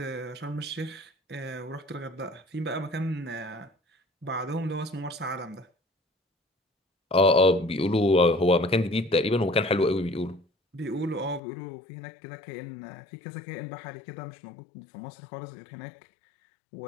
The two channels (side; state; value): right; drops out; at 11.4 s